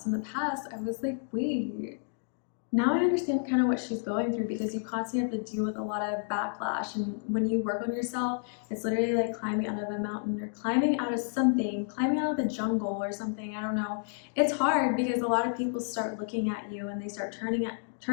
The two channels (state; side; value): silent; right; digital silence